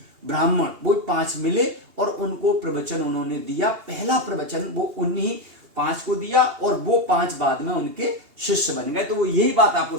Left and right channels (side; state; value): left; late; 2.8 ms